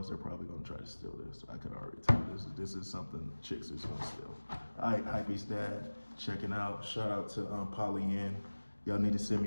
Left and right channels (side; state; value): both; inverted; correlation -1.00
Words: they're probably gonna try to steal this. I could already tell this is something chicks is gonna steal. All right, Hypebeast Dad, checking out. Shout out to Polly Y'all need to send me